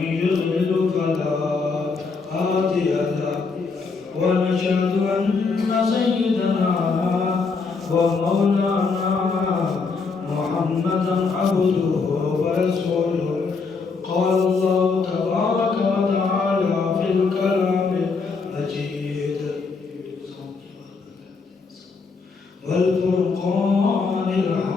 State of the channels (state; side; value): quieter; right; 4.7 dB